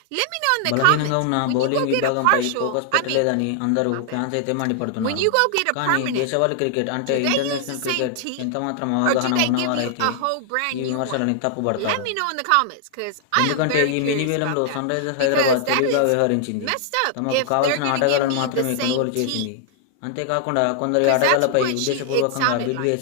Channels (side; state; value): both; different; correlation -0.01